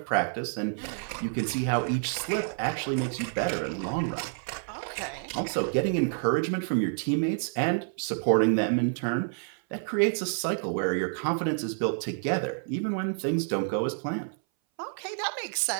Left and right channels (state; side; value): silent; left; 59 dB below the other